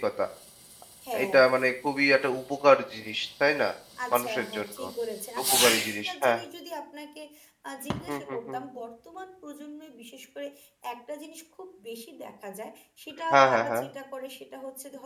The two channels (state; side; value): identical; both; correlation 1.00